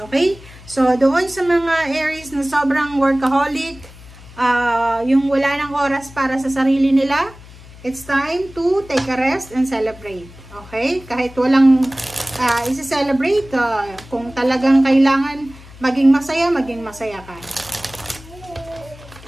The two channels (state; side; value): noise; left; hum, 20 dB below the sound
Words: Okay? So, doon sa mga Aries na sobrang workaholic, yung wala ng oras para sa sarili nila, it's time to take a rest and celebrate. Okay? Kahit walang isi-celebrate, kung talagang kailangan maging masaya ka.